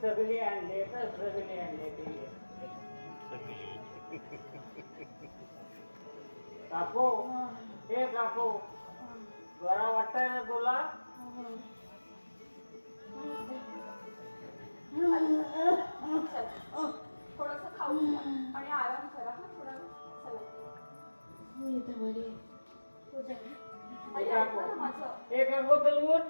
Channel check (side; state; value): both; inverted; correlation -1.00